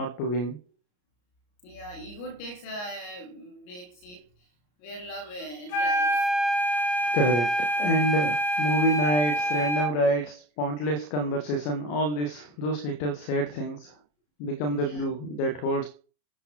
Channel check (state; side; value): late; right; 34 ms